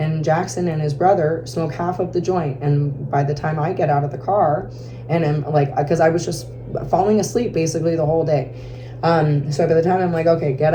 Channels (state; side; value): identical; both; correlation 1.00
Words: Jackson and his brother smoke half of the joint. And by the time I get out of the car, and I'm like, because I was just falling asleep basically the whole day. So by the time I'm like, okay, get